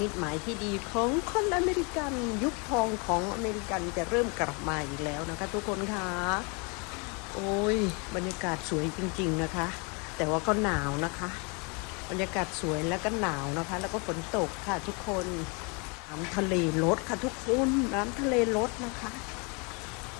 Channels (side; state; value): right; quieter; 32.6 dB